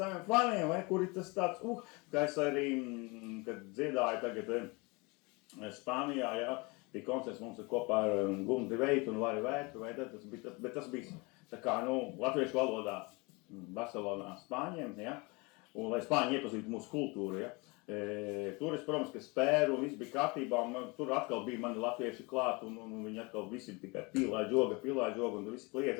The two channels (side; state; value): right; quieter; 27.2 dB